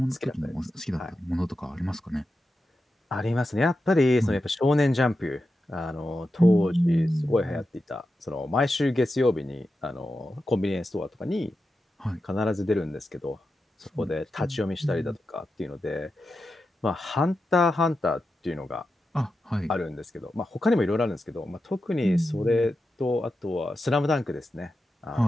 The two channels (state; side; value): normal; both; correlation 0.90